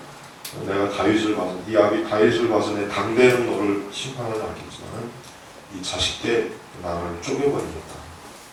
내가 다윗을 봐서 네 아비 다윗을 봐서 내 당대는 너를 심판하지 않겠지만 이 자식 때 나를 쪼개버리겠다.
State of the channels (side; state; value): both; identical; correlation 1.00